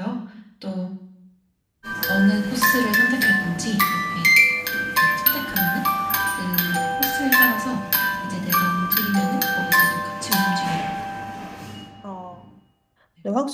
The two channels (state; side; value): identical; both; correlation 1.00